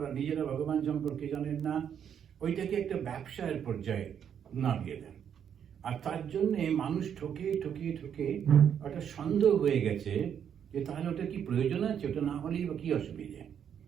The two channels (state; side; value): quieter; left; 8.5 dB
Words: নিজেরা ভগবান সম্পর্কে জানেন না, ওইটাকে একটা ব্যবসায়ের পর্যায়ে নামিয়ে দেন। আর তার জন্যে মানুষ ঠকে ঠকে ঠকে ওটা সন্দেহ হয়ে গেছে যে তাহলে ওটা কি প্রয়োজন আছে, ওটা না হলেই বা কি অসুবিধে।